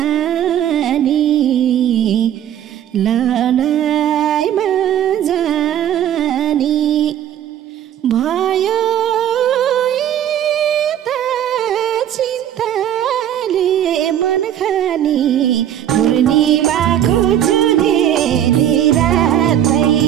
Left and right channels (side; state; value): left; quieter; 10.6 dB